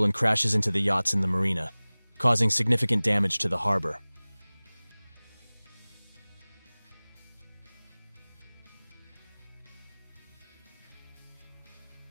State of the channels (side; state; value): both; inverted; correlation -1.00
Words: and crashes into the yachts in the marina, causing significant damage to the harbor.